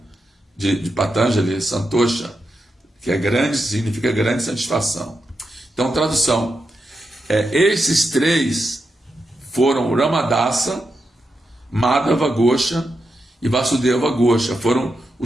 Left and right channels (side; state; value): both; normal; correlation 0.86